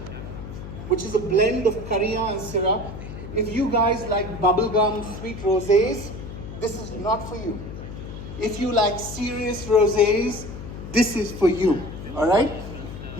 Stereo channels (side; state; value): left; noise; hum, 11 dB below the sound